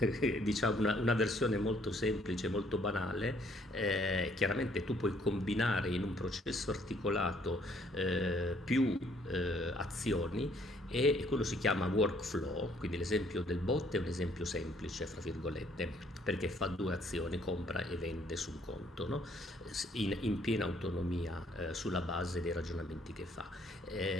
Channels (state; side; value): normal; both; correlation 0.64